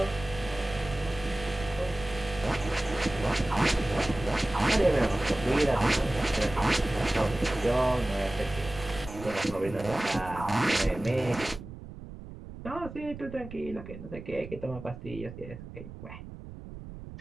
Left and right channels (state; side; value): noise; right; rumble, 13 dB below the sound